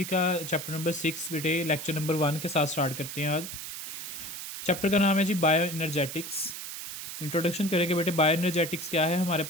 का chapter number 6 बेटे लेक्चर नंबर 1 के साथ स्टार्ट करते हैं। आज चैप्टर का नाम है जी बायो एनर्जेटिक्स। इंट्रोडक्शन करेंगे बेटे। बायो एनर्जेटिक्स क्या है हमारे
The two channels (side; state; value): right; noise; hiss, 8 dB below the sound